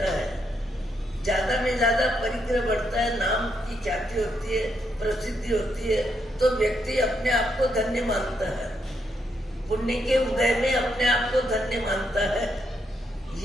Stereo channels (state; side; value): normal; both; correlation 0.78